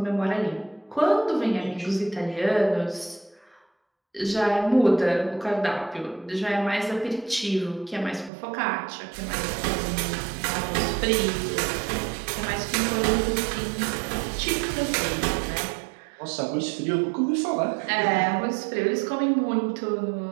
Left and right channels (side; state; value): left; drops out; at 8.3 s